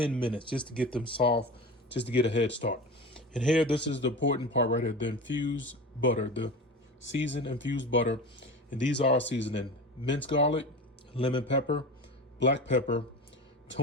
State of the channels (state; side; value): normal; both; correlation 0.31